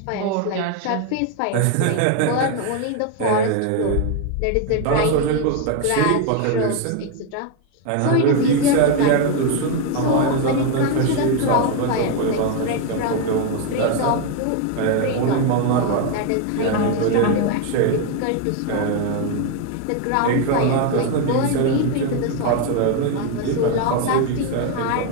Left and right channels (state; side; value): different; both; correlation 0.01